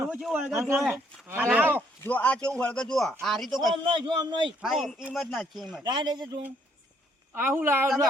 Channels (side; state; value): both; normal; correlation 0.68